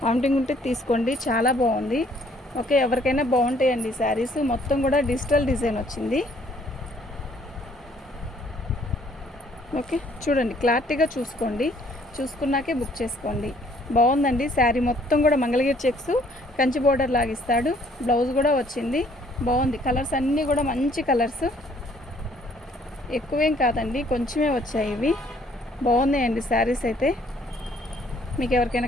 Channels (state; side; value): normal; both; correlation 0.62